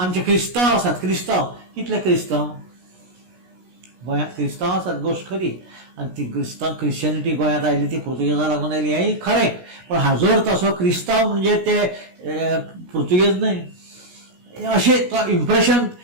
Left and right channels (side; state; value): left; late; 16 ms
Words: क्रिस्तांव आसात. क्रिस्तांव कितले क्रिस्तांव गोंयांत क्रिस्तांव आसात, गोश्ट खरी. आनी ती क्रिश्चनिटी गोंयांत आयली ती पुर्तुगेजां लागून आयली हेंय खरें. पण हाजोर तसो क्रिस्तांव म्हणजे ते पुर्तुगेज न्हय अशें तो इम्प्रेशन